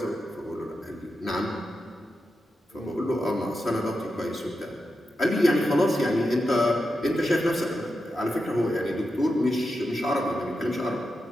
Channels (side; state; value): both; normal; correlation 0.88